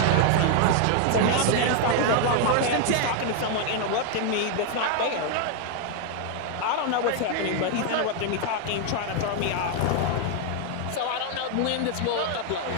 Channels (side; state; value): both; different; correlation 0.00